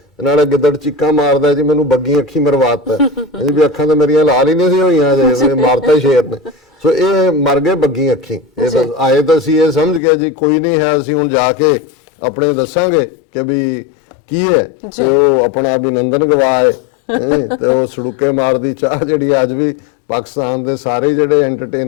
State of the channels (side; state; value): right; drops out; at 10.0 s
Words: ਨਾਲੇ ਗਿੱਦੜ ਚੀਕਾਂ ਮਾਰਦਾ ਜੀ ਮੈਨੂੰ ਬੱਗੀ ਅੱਖੀ ਮਰਵਾਤਾ। ਵੀ ਅੱਖਾਂ ਤਾਂ ਮੇਰੀਆਂ ਲਾਲ ਹੀ ਨਹੀਂ ਸੀ ਹੋਈਆਂ ਜੇ ਮਾਰਤਾ ਸ਼ੇਰ ਨੇ। ਸੋ ਇਹ ਮਰ ਗਏ ਬੱਗੀ ਅੱਖੀ। ਇਹ ਤਾਂ ਆਏ ਤਾਂ ਅਸੀਂ ਇਹ ਸਮਝ ਗਏ ਜੀ ਕੋਈ ਨਹੀਂ ਹੈ, ਅਸੀਂ ਹੁਣ ਜਾ ਕੇ ਆਪਣੇ ਦੱਸਾਂਗੇ ਕਿ ਵੀ ਕੀ ਹੈ। ਤੇ ਉਹ ਆਪਣਾ ਅਭਿਨੰਦਨ ਗਵਾਏ ਤੇ ਉਹ ਸੜੁੱਕੇ ਮਾਰਦੀ ਚਾਹ ਜਿਹੜੀ ਅੱਜ ਵੀ ਪਾਕਿਸਤਾਨ ਦੇ ਸਾਰੇ ਜਿਹੜੇ